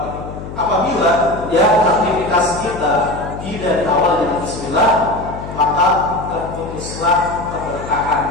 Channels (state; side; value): noise; left; hum, 10 dB below the sound